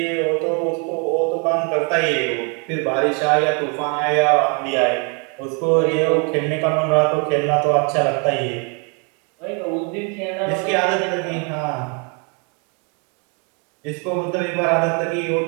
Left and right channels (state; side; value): quieter; left; 35.5 dB